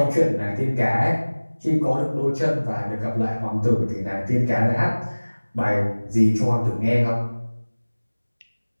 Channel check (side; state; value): both; inverted; correlation -1.00